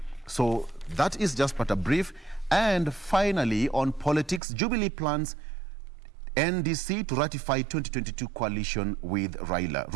So that is just but a brief. And finally, on politics, Jubilee plans NDC to ratify 2022 coalition with Raila.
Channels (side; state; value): left; drops out; at 4.4 s